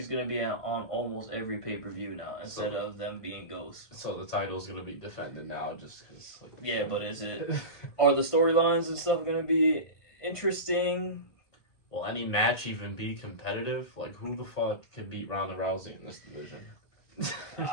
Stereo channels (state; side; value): late; right; 1.9 ms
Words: gonna be on almost every pay-per-view now instead of them being ghosts. So the title's gonna be defended now just because. Like, yeah, but are the storylines and stuff gonna be interesting? Will any match even be competitive? Like, who the fuck can beat Ronda Rousey in this division?